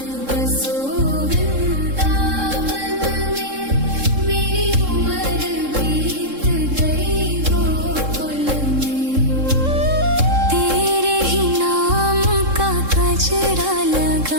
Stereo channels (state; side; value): late; left; 3.7 ms